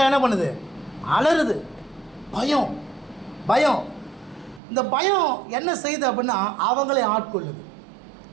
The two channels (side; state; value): left; drops out; at 4.6 s